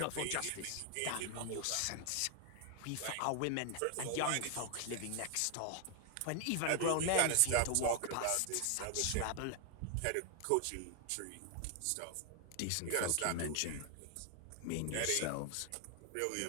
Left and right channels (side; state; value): both; different; correlation 0.00